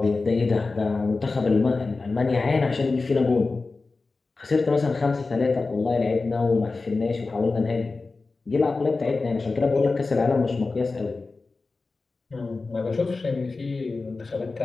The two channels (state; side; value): quieter; right; 3.8 dB